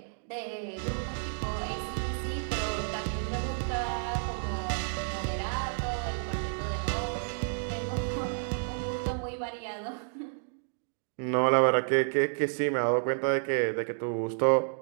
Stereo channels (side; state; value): left; silent; 57 dB below the other